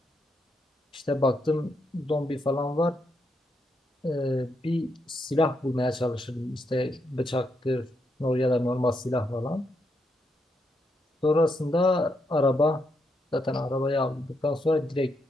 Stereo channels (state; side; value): normal; both; correlation 0.80